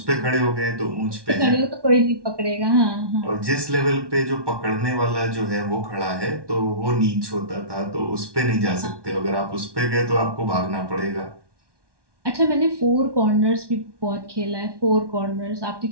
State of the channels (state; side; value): late; left; 1.1 ms